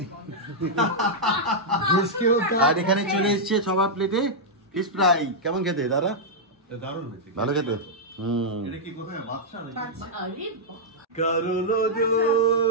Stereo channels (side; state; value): both; normal; correlation -0.07